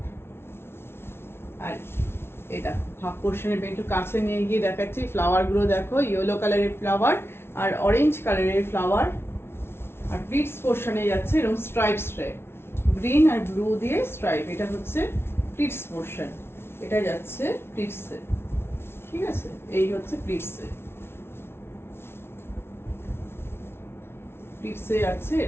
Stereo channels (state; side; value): late; right; 0.12 ms